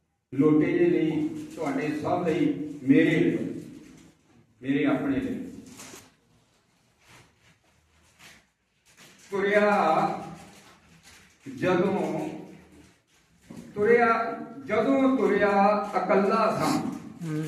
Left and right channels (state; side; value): identical; both; correlation 1.00